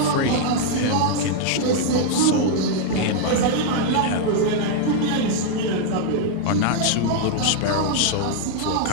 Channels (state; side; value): different; both; correlation 0.00